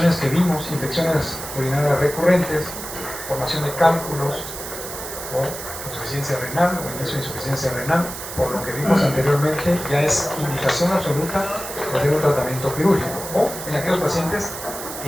que vimos, infecciones urinarias recurrentes, formación de cálculos o insuficiencia renal o inicio de insuficiencia renal, por lo que vimos anteriormente, ya es indicación absoluta de hacer un tratamiento quirúrgico, o en aquellos pacientes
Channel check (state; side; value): noise; right; hiss, 9 dB below the sound